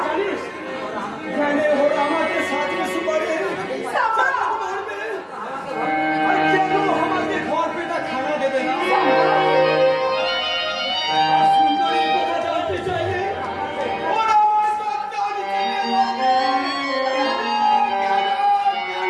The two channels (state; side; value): identical; both; correlation 1.00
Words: जानिस मैंने हो हमारे साथ में सुबह সাম্বা, मार दे, और क्या लो हमारे घर पे ना खाना दे देना। সাম্বা। सुंदरी को बचाते चाहिए और हमारे साथ जाने